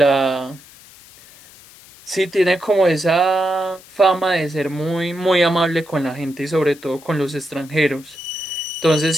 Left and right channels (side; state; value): left; noise; hiss, 23 dB below the sound